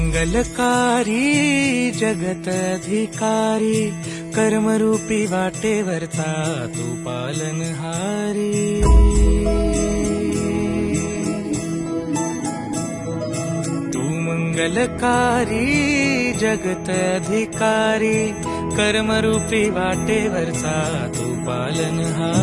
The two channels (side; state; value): both; identical; correlation 1.00